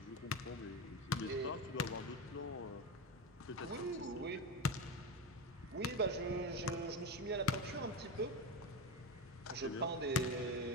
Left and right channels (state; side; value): normal; both; correlation 0.19